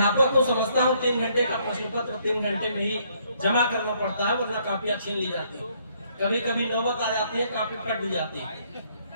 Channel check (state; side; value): inverted; both; correlation -0.68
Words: को समझता हूँ 3 घंटे का प्रश्न पत्र 3 घंटे में ही जमा करना पड़ता है, वरना कापियां छीन ली जाती है। कभी कभी नौबत आ जाती है, कापी फट भी जाती है।